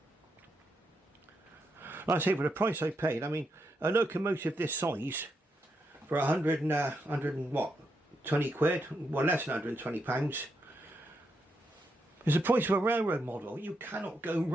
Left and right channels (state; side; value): normal; both; correlation 0.82